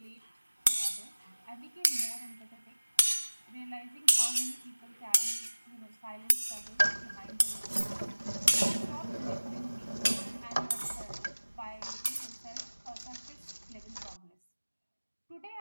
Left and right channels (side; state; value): both; inverted; correlation -1.00